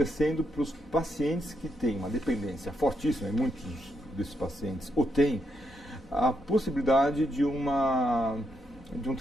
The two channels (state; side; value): normal; both; correlation 0.80